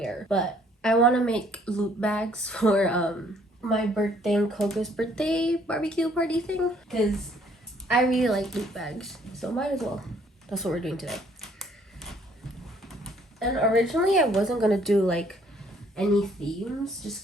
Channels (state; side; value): normal; both; correlation 0.63